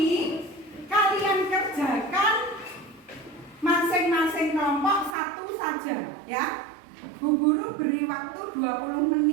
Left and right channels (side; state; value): left; drops out; at 5.2 s